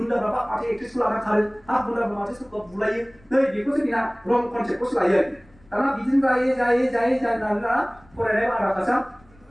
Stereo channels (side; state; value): left; noise; rumble, 28 dB below the sound